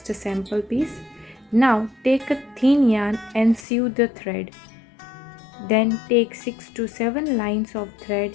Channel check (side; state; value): right; drops out; at 3.7 s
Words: a sample piece. Now take a thin yarn and sew the thread. Then take 6 to 7 lines of thread